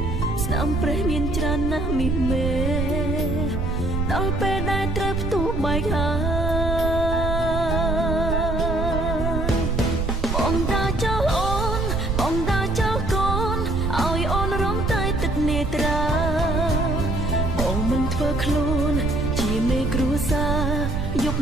ស្នាមព្រះមានច្រើនណាស់មីមេដល់ពេលដែលត្រូវផ្ទុះបែកហើយបងតាចោលអូនបងតាចោលកូនឲ្យអូនរំតែទឹកនេត្រាបងមិនធ្វើខ្លួនជាមេគ្រួសារយប់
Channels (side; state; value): right; noise; rumble, 1 dB below the sound